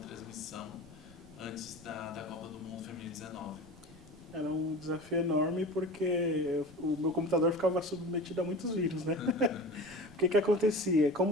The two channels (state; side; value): noise; right; rumble, 23 dB below the sound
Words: antes da Copa do Mundo Feminino 19. Era um desafio enorme porque o meu computador ficava submetido a muitos vírus, né? O que acontecia?